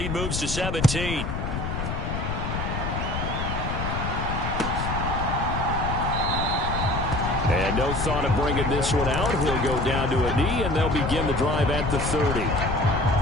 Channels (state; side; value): noise; left; rumble, 3 dB below the sound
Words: moves to 17. And no thought of bringing this one out. He'll go down to a knee, and they'll begin the drive at the 30.